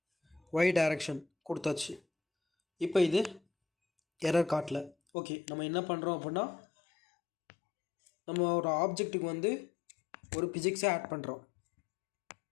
ஒய் டைரக்ஷன் கொடுத்தாச்சு. இப்போ இது எரர் காட்டல. ஓகே, நம்ம என்ன பண்ணுறோம் அப்படின்னா நம்ம ஒரு ஆப்ஜெக்ட்டுக்கு வந்து ஒரு பிசிக்ஸை ஆட் பண்ணுறோம்.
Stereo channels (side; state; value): right; drops out; at 5.0 s